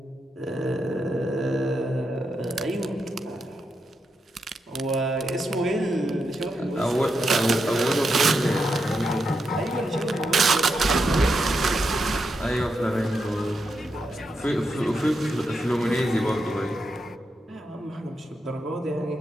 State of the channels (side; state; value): both; normal; correlation 0.84